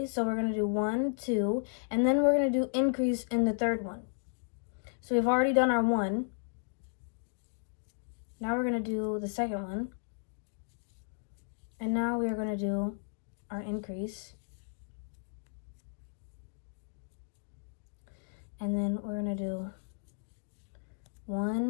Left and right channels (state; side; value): silent; right; digital silence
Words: So we're going to do 1, 2, and then we're going to do increase in the third one. So we've already done our 1. Now we're going to do the second one. And now we are going to do our increase. And then we're going to do